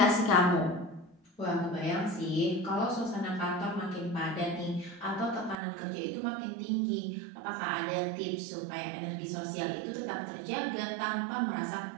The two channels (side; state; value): left; drops out; at 5.6 s